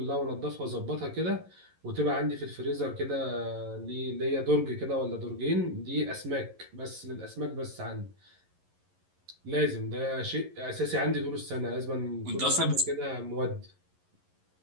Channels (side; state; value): left; late; 11 ms